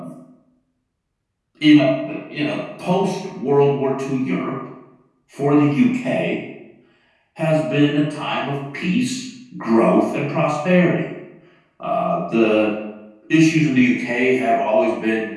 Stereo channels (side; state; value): both; identical; correlation 1.00